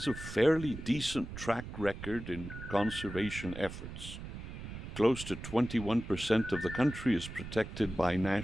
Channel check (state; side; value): noise; right; rumble, 10 dB below the sound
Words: a fairly decent track record in conservation efforts. Close to 21% of the country is protected by